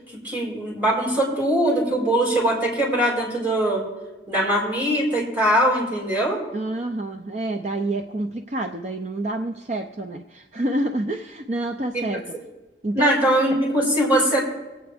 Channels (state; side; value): normal; both; correlation 0.52